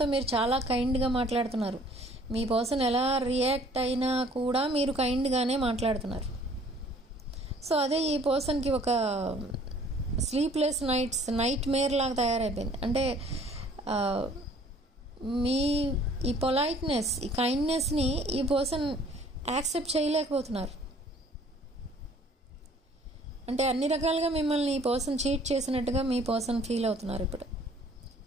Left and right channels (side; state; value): both; normal; correlation 0.56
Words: మీరు చాలా కైండ్గా మాట్లాడుతున్నారు. మీ పర్సన్ ఎలా రియాక్ట్ అయినా కూడా మీరు కైండ్గానే మాట్లాడుతున్నారు. సో అదే ఈ పర్సన్కి ఒక స్లీప్లెస్ నైట్ మేర్ లాగా తయారైపోయింది. అంటే మీ ఈ పొలైట్నెస్, ఈ కైండ్నెస్ని ఈ పర్సన్ యాక్సెప్ట్ చేయలేకపోతున్నారు. అంటే అన్ని రకాలుగా మిమ్మల్ని ఈ పర్సన్ చీట్ చేసినట్టుగా మీ పర్సన్ ఫీల్ అవుతున్నారు. ఇప్పుడు